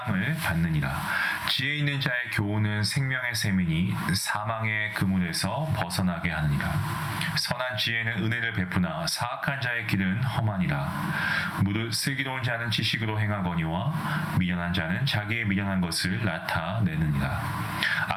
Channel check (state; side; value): identical; both; correlation 1.00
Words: 받느니라. 지혜 있는 자의 교훈은 생명의 셈이니 사망의 그물에서 벗어나게 하느니라. 선한 지혜는 은혜를 베푸나 사악한 자의 길은 험하니라. 무릇 슬기로운 자는 지식으로 행하거니와 미련한 자는 자기의 미련한 것을 나타내느니라.